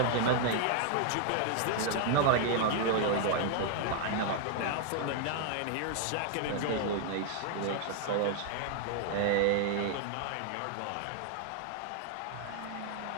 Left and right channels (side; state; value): both; different; correlation 0.00